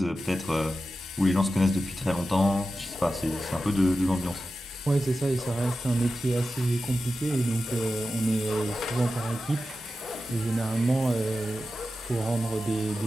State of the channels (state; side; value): normal; both; correlation 0.92